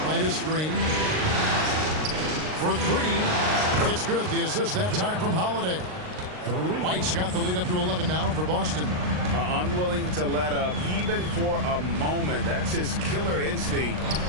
Right a screen. For 3. It's good. The assist that time from Holiday. White's got the lead up to 11 now for Boston. Unwilling to let up even for a moment. That's his killer instinct,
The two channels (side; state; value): left; late; 39 ms